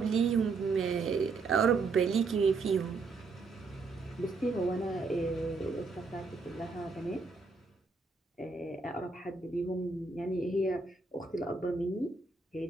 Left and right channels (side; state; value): left; quieter; 4.1 dB